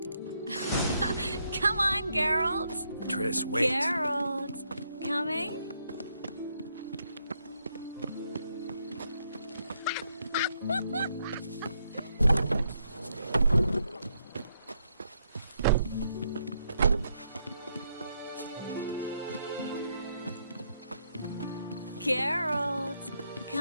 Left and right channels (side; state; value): both; inverted; correlation -0.76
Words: Come on, Geralt. Triss, wait. Geralt. Coming? Geralt,